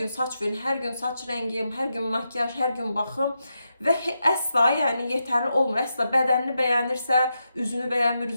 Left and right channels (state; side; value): inverted; both; correlation -0.86